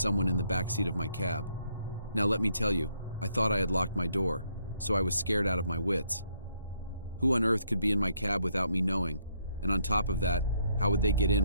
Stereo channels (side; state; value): both; inverted; correlation -0.72